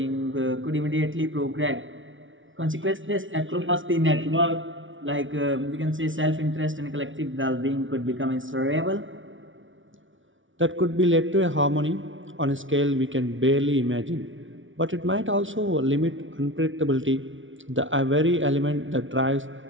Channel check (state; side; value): late; left; 0.56 ms